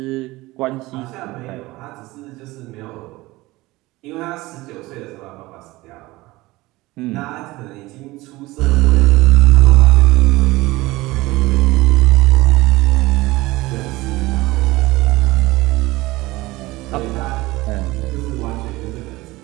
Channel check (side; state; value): left; quieter; 19.9 dB